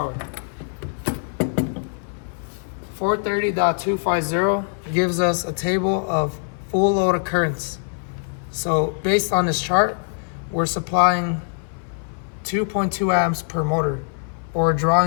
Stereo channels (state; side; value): silent; right; 58 dB below the other